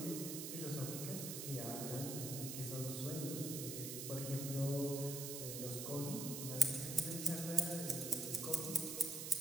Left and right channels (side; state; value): right; noise; hiss, 5 dB below the sound